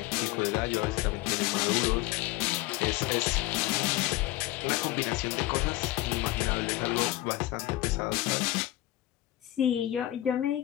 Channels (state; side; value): quieter; right; 16.3 dB